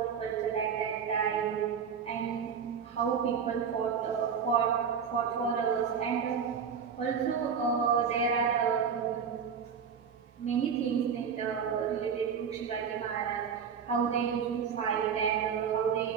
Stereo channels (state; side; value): quieter; left; 6.9 dB